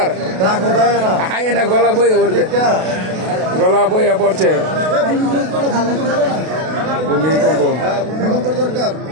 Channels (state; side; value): late; left; 32 ms